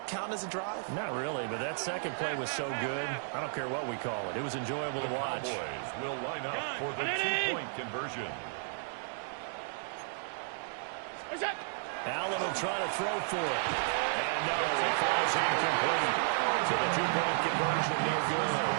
count as a drive? Not really, but that second play was so good. I don't care what we call it. It was enjoyable to watch. The Cowboys will line up for the 2-point conversion. Allen will try to throw for it. And no, it falls incomplete. So the 2-point conversion, no good.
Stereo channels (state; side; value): silent; left; digital silence